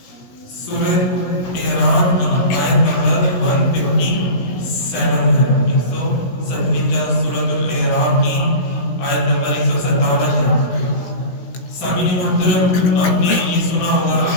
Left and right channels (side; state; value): right; late; 17 ms